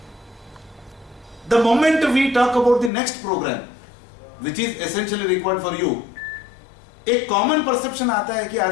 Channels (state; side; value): drops out; right; at 2.9 s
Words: the moment we talk about the next program which is essentially required for you, एक कॉमन परसेप्शन आता है कि